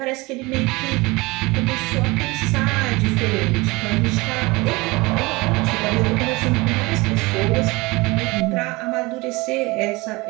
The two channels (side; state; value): left; quieter; 23.3 dB